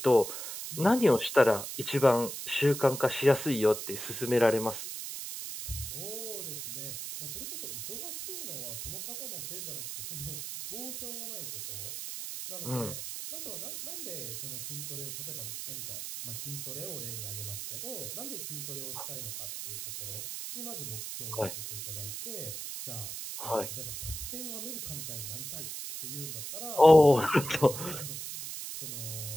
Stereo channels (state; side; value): noise; right; hiss, 6 dB below the sound